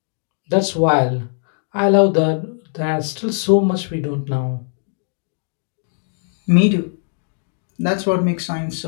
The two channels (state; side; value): silent; right; 66 dB below the other